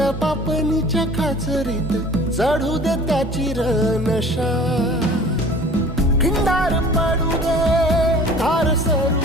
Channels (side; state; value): both; normal; correlation 0.46